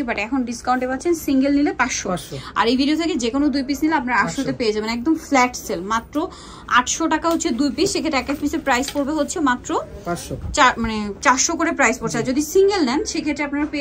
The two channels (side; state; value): both; identical; correlation 1.00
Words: বাট এখন ডিসকাউন্টে পাচ্ছেন সিঙ্গেল নিলে 500, আর এই ভিডিও থেকে যে কোনো 2 পিস নিলে আপনার 800-তে পেয়ে যাবেন। একদম ফ্ল্যাট সেল, মাত্র 800 টাকা হচ্ছে 2 পিস। সেক্ষেত্রে এক এক পিসের প্রাইস পড়বে হচ্ছে মাত্র 400 করে প্রাইস পড়ছে। আর যদি সিঙ্গেল নেন সেক্ষেত্রে আপনারা